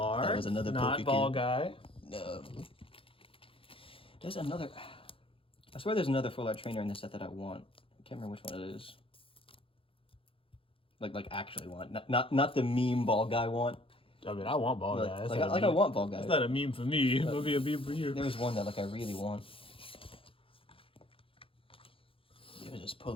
That was another not ball guy. No. There's another. I swear there's another full art trainer in this set that I want. I can't remember which one it is. Like actually want, not the meme ball guy want. I mean, I want ball guy. I want ball guy. It's not a meme for me. It'll be a meme for you. There's one that I really want. If I just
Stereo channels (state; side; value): late; right; 0.26 ms